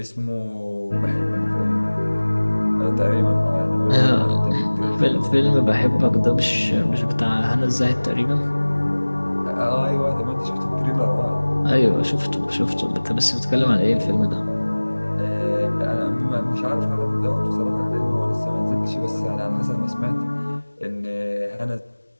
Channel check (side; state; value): both; inverted; correlation -1.00